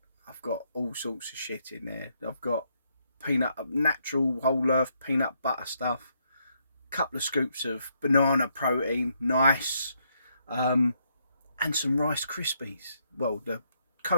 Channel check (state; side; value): inverted; both; correlation -0.75